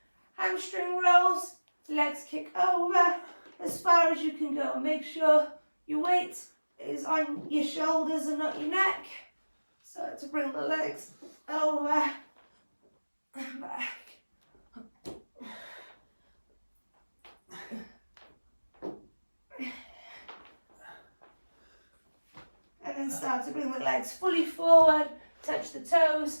Hamstring rolls, legs kick over as far as you can go. Make sure your weight is on your shoulders and not your neck. Start to bring the legs over and back. And then start to bring the legs fully forward, touch the toes,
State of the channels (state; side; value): inverted; both; correlation -1.00